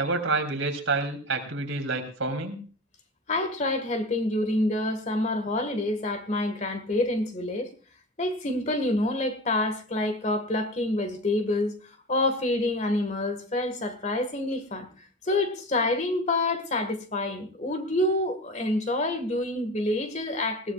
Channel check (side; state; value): both; normal; correlation 0.31